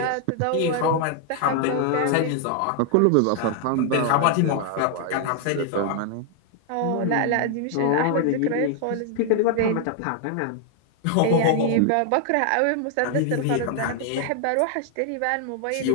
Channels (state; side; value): different; both; correlation 0.00